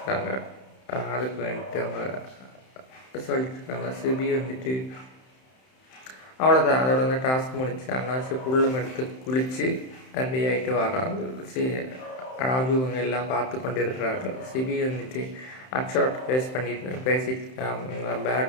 அதுக்கு வேண்டிட்டு அவங்க சொல்லியிருக்காங்க. சிபி வந்துட்டு அவ்வளோதான், அதோட வந்து டாஸ்க் முடிச்சு அண்ணாச்சி புல்லும் எடுத்து குளித்து ரெடி ஆகிட்டு வராங்க. ராஜு இவங்க எல்லாம் பார்த்து கொண்டு இருக்கிறார்கள். சிபி வந்துட்டு அக்ஷர்ட் பேசிட்டு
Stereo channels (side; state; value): right; late; 31 ms